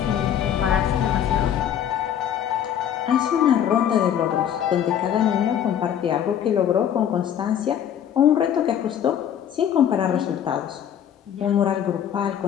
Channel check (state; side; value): quieter; right; 9.6 dB